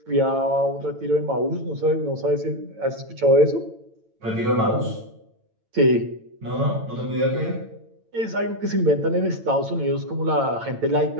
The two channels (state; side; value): late; left; 9.0 ms